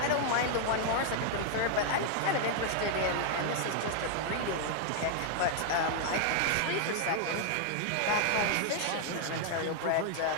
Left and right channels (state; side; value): different; both; correlation 0.00